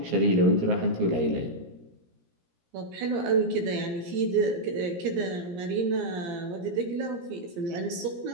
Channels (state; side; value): late; left; 17 ms